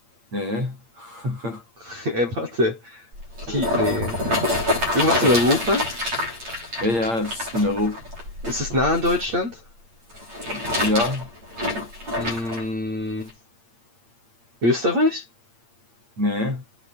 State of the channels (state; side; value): late; left; 8.7 ms